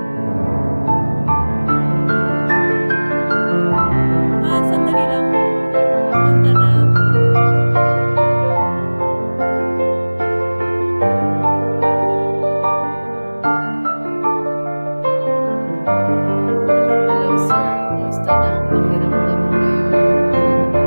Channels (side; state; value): both; inverted; correlation -1.00